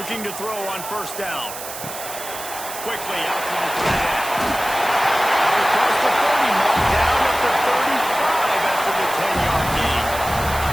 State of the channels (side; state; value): right; noise; hiss, 10 dB below the sound